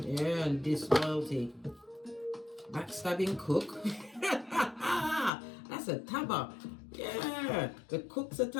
and disloyalty. Backstabbing cook. That's a tabba. Yeah, the cook's a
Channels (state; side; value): drops out; right; at 5.3 s